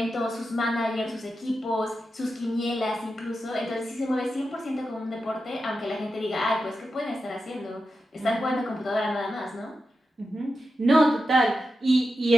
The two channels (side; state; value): both; normal; correlation 0.89